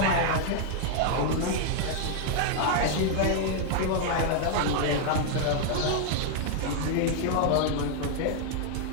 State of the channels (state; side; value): different; both; correlation 0.00